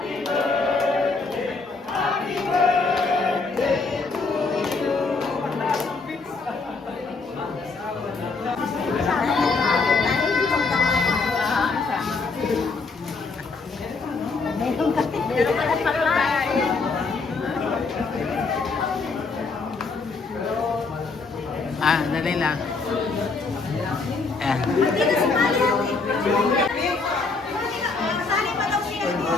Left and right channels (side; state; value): right; quieter; 4.1 dB